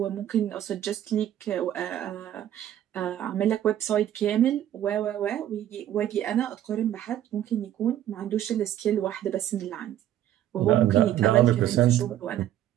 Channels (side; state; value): left; quieter; 11.8 dB